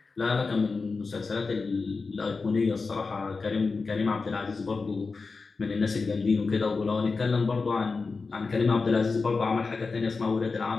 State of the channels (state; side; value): quieter; right; 4.3 dB